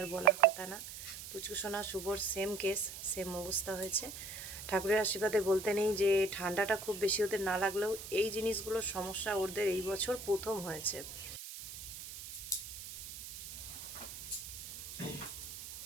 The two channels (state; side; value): noise; right; hiss, 10 dB below the sound